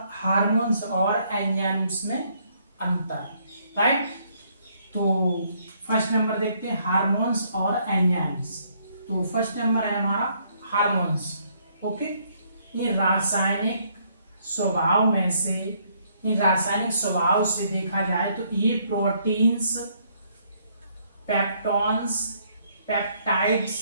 हार्मोन्स और एंजाइम्स में अंतर, राइट। तो फर्स्ट नंबर देखते हैं हार्मोन्स और एंजाइम्स। तो फर्स्ट नंबर है हमारा हार्मोन्स। ओके, ये रासायनिक स्वभाव में से, रासायनिक स्वभाव से देखा जाए तो ये प्रोटीन्स, पेप्टॉन्स, पेप्टाइड्स,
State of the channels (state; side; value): inverted; both; correlation -0.68